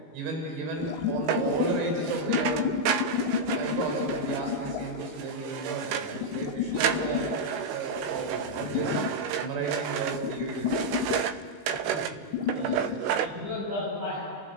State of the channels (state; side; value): late; left; 19 ms